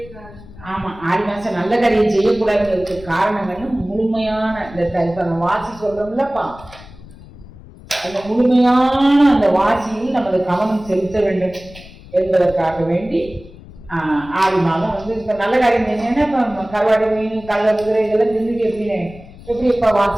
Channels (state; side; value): noise; left; rumble, 19 dB below the sound